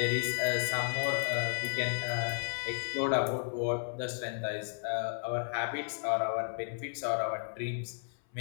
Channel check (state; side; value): silent; right; 56 dB below the other